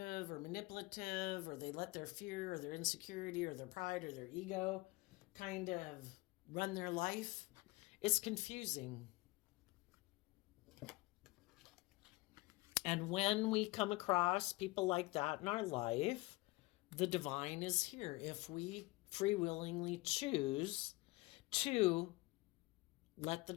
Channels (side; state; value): right; quieter; 22.0 dB